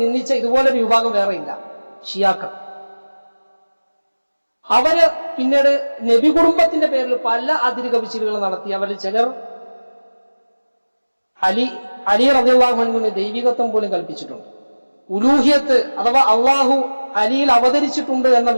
നിന്ദിച്ച ഇതുപോലൊരു വിഭാഗം വേറെയില്ല, ഷിയാക്കൾ. അവര് പിന്നീട് നബി കുടുംബത്തിന്റെ പേരിൽ പല അതിര് കവിച്ചിലുകൾ നടത്തി. അവരിൽ ചിലർ അലി റളിയല്ലാഹു അൻഹുവിന് ദൈവികത്വം പോലും കൽപ്പിച്ചിട്ടുണ്ട്. ഉലൂഹിയത്ത് അഥവാ അള്ളാഹു അലിയിൽ അവതരിച്ചിട്ടുണ്ട് എന്ന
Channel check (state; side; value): inverted; both; correlation -1.00